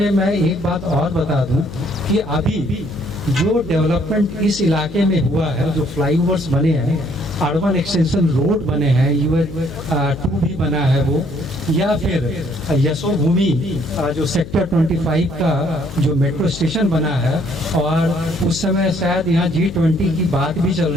मैं एक बात और बता दूं कि अभी जो डेवलपमेंट इस इलाके में हुआ है, जो फ्लाईओवर्स बने हैं, अर्बन एक्सटेंशन रोड बने हैं, UH2 भी बना है वो, या फिर यशोभूमि जो सेक्टर 25 का जो मेट्रो स्टेशन बना है, और उस समय शायद यहाँ G20 की बात भी चल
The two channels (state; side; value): noise; left; hum, 13 dB below the sound